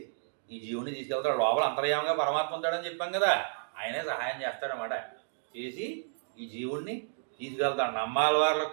ఈ జీవుని తీసుకెళ్తాడు. లోపల అంతర్యామంగా పరమాత్మ ఉంటాడని చెప్పాం కదా, ఆయనే సహాయం చేస్తాడనమాట. చేసి ఈ జీవుణ్ణి తీసుకెళ్తాడు. నమ్మాలి వారికి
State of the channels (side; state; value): left; silent; digital silence